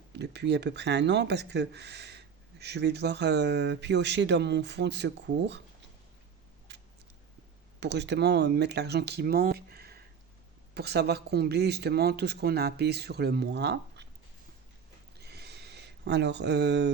depuis à peu près un an parce que je vais devoir piocher dans mon fonds de secours pour justement mettre l'argent qui manque pour savoir combler justement tout ce qu'on a payé sur le mois. Alors,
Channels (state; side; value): quieter; left; 6.8 dB